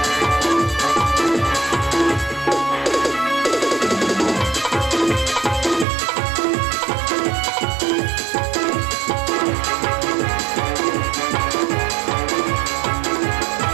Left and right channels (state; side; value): drops out; left; at 5.9 s